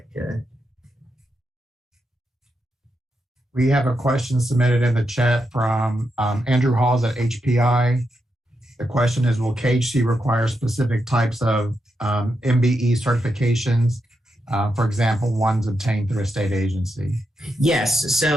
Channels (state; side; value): normal; both; correlation 0.85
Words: we have a question submitted in the chat from Andrew Halls at HPI. The question is, will KHC require specific types of MBE certifications? For example, ones obtained through a state agency. Yes,